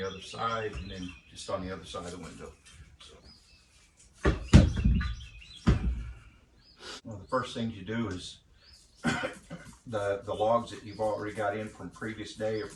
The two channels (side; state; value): both; identical; correlation 1.00